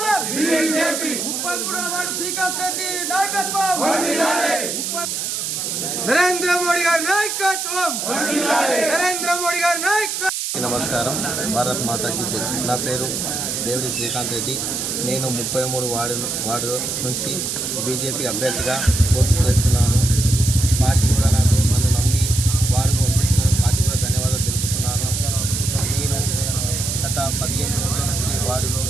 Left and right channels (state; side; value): noise; right; hiss, 2 dB below the sound